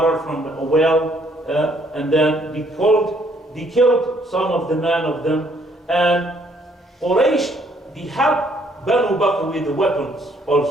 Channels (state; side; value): normal; both; correlation 0.66